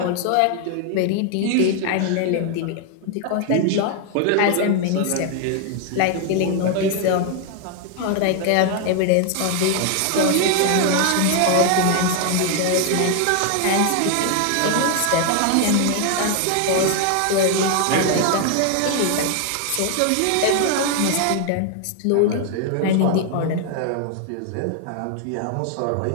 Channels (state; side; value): different; both; correlation 0.00